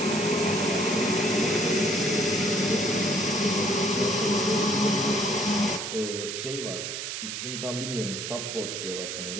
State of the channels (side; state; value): right; noise; hiss, 5 dB below the sound